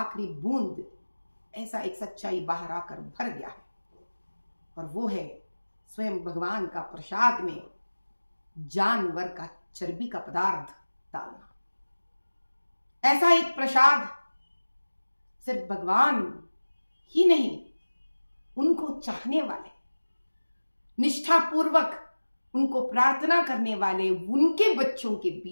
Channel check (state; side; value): inverted; both; correlation -1.00